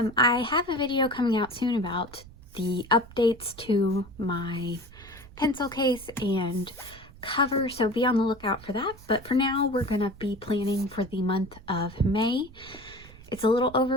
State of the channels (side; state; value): right; noise; rumble, 20 dB below the sound